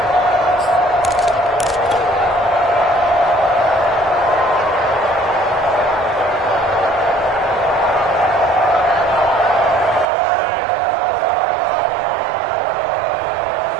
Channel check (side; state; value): left; drops out; at 10.1 s